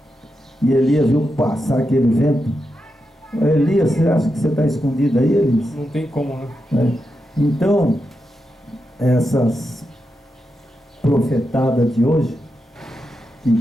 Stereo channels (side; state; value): both; normal; correlation 0.87